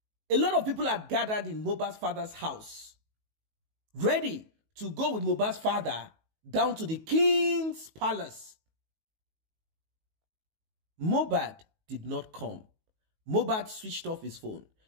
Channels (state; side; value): late; left; 19 ms